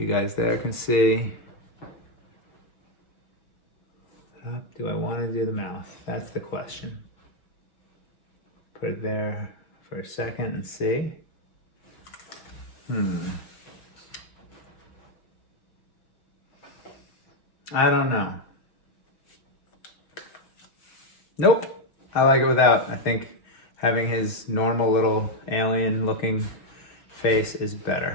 guys there can see. Do I want to do the mouth? That's the question. Put it there for a second and see. I don't know. Nope. I like it without. I think having his normal little alien looking face is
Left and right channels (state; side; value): late; right; 6.4 ms